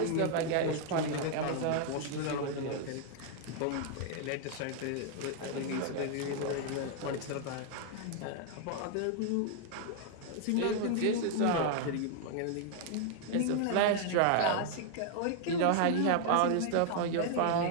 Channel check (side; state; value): both; different; correlation 0.00